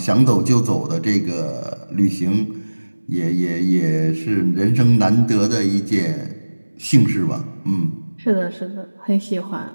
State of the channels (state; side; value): inverted; both; correlation -1.00